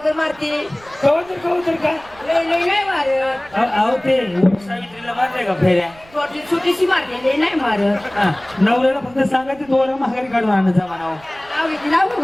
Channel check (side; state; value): right; noise; rumble, 25 dB below the sound